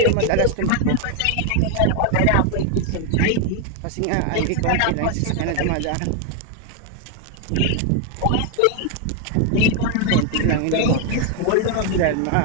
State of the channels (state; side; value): different; both; correlation 0.01